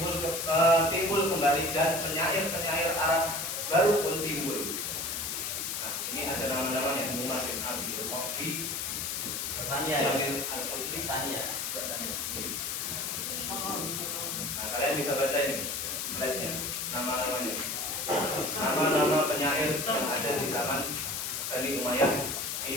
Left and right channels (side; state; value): left; noise; hiss, 2 dB below the sound